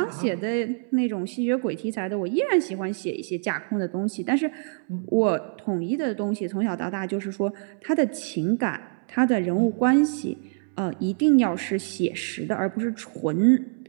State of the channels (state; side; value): silent; left; 61 dB below the other